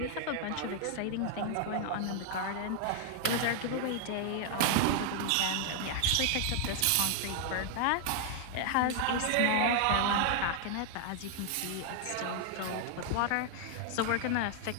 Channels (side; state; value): both; different; correlation 0.00